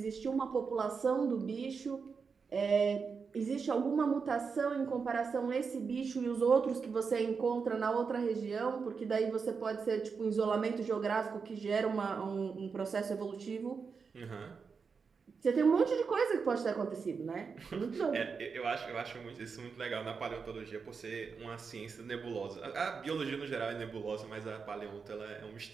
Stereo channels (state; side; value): quieter; left; 5.4 dB